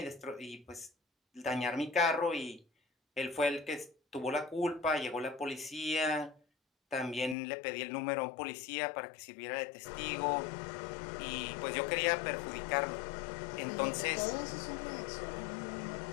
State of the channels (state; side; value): drops out; right; at 7.4 s